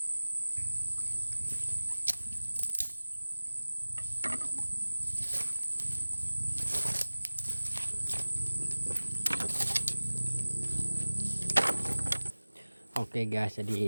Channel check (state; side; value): inverted; both; correlation -1.00